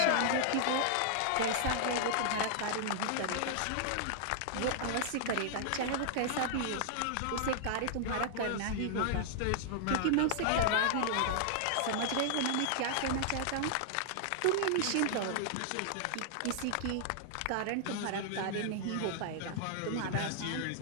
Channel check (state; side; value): different; both; correlation -0.01